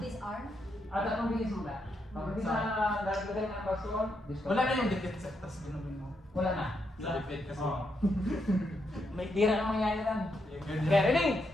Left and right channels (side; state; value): both; normal; correlation 0.80